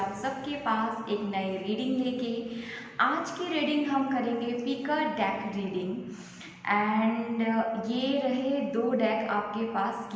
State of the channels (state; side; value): identical; both; correlation 1.00